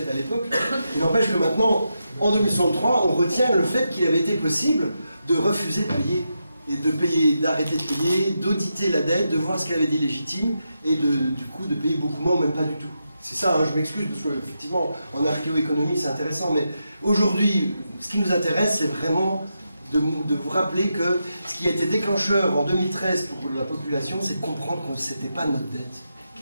à l'époque. Il n'empêche que maintenant, en 2063, on retient le fait qu'il avait été possible de refuser de payer, et de payer, d'arrêter de payer, d'auditer la dette, de voir ce qu'elle avait d'illégitime, et du coup de payer beaucoup moins ou même pas du tout. C'est ça, hein, je m'excuse, parce qu'effectivement, en archéoéconomie, c'est intéressant, mais aujourd'hui, ce qui nous intéresse, c'est vraiment de vous rappeler que ce qui a été déclencheur en 2013 pour la population, c'est de comprendre que ce n'était pas notre dette,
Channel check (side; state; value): both; inverted; correlation -0.86